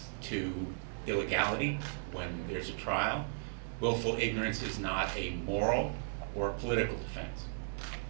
to illegality when there's a trial. Willful ignorance is not a moral or political defense.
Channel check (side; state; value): left; silent; digital silence